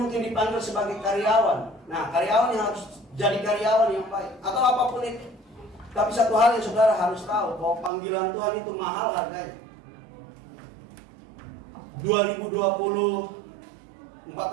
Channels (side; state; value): left; drops out; at 7.9 s